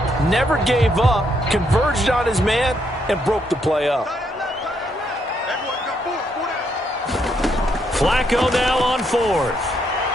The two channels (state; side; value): normal; both; correlation 0.75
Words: Never gave up, converged on his man, and broke the play up. Flacco now on fourth.